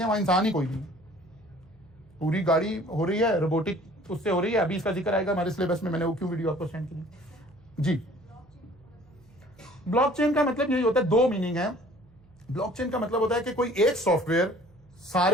वहां इंसान ही कोई नहीं, पूरी गाड़ी हो रही है रोबोटिक उससे हो रही है। अभी इसका जिक्र आएगा हमारे सिलेबस में, मैंने वो क्यों वीडियो आपको सेंड की जी। ब्लॉकचेन का मतलब यही होता है, दो मीनिंग है। ब्लॉकचेन का मतलब होता है कि कोई एक सॉफ्टवेयर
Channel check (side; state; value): right; noise; hum, 28 dB below the sound